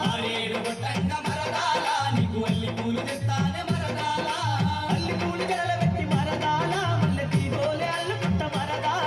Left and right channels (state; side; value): identical; both; correlation 1.00